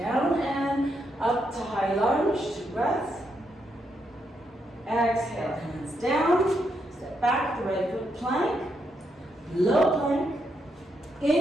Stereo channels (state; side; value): normal; both; correlation 0.80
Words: and up to high lunge, 2 breaths. Exhale, hands down, step back, the right foot plank, low plank.